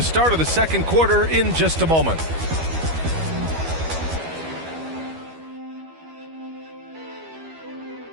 start of the second quarter in just a moment.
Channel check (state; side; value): late; left; 12 ms